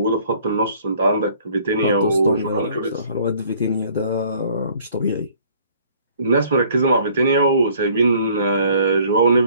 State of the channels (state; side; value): inverted; both; correlation -0.57